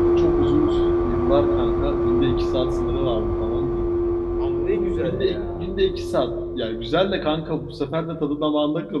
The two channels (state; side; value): identical; both; correlation 1.00